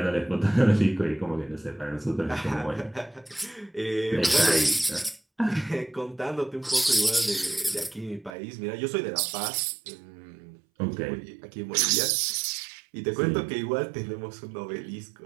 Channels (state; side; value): drops out; left; at 8.3 s